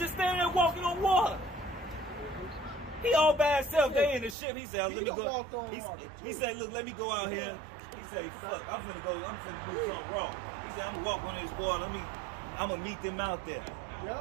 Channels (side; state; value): left; drops out; at 4.4 s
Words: standing there walking on water. He all by himself. They in the ship. He said, let me go. He said, look, let me go out here. He said, fuck, I'm finna do something wrong. He said, I'm gonna walk on this water. I'm gonna meet them out there.